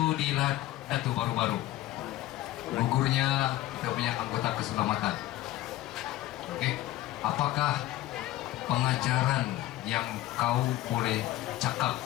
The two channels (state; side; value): quieter; right; 15.4 dB